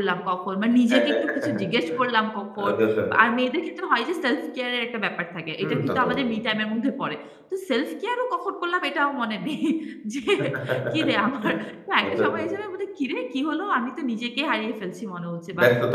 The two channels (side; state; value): both; identical; correlation 1.00